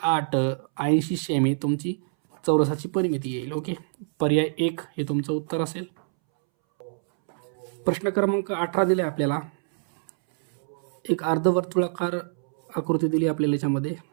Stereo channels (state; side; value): silent; left; 61 dB below the other